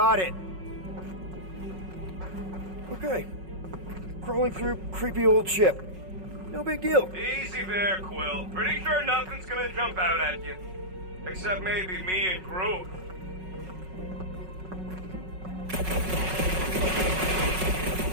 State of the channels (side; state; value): left; late; 5.4 ms